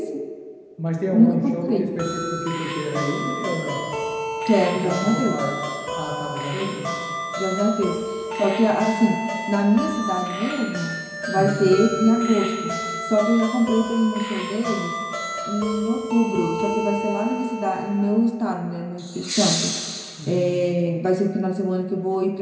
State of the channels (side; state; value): both; identical; correlation 1.00